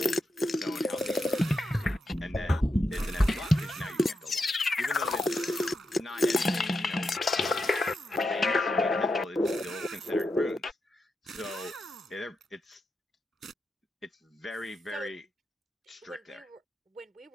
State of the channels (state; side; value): normal; both; correlation 0.86